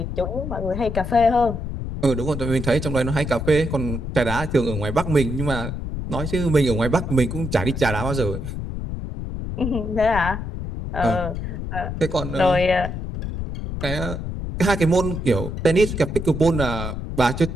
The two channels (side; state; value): left; noise; rumble, 5 dB below the sound